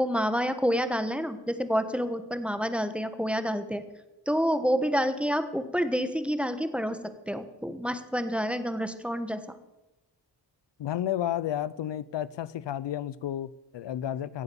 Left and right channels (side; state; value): both; normal; correlation 0.75